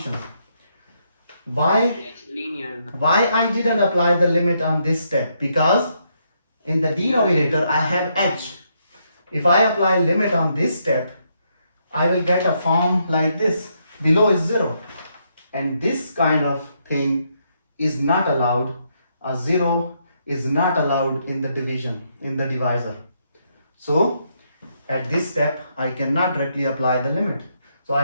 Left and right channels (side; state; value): both; inverted; correlation -0.76